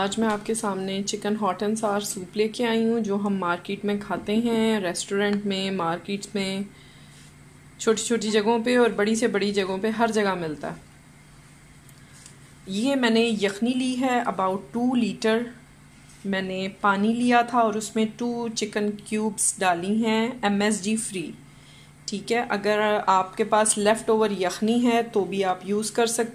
मैं आपके सामने चिकन हॉट एंड सार सूप लेके आई हूँ, जो हम मार्केट में खाते हैं, रेस्टोरेंट में, मार्केट्स में, छोटी छोटी जगहों पे और बड़ी से बड़ी जगहों पे हर जगह मिलता है। ये मैंने यखनी ली है, अबाउट 2 लीटर मैंने पानी लिया था और उसमें 2 चिकन क्यूब्स डाली हैं, MSG फ्री। ठीक है, अगर आपके पास लेफ़्ट ओवर यखनी है तो भी आप यूज़ कर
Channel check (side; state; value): both; identical; correlation 1.00